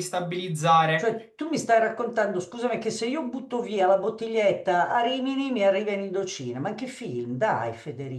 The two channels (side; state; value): both; identical; correlation 1.00